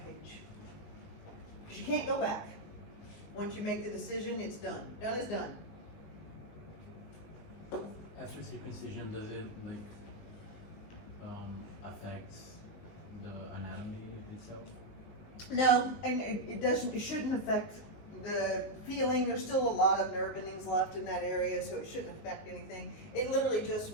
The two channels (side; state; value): right; late; 19 ms